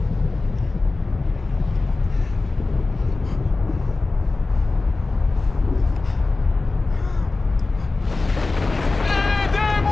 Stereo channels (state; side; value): quieter; right; 3.5 dB